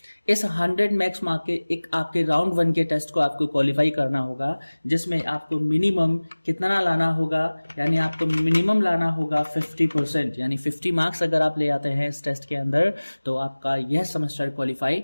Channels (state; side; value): inverted; both; correlation -1.00